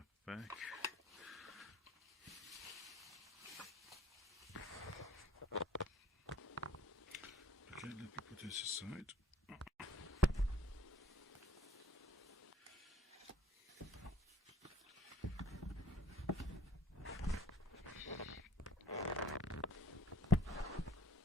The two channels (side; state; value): both; normal; correlation 0.56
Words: back. Okay, let me put this aside.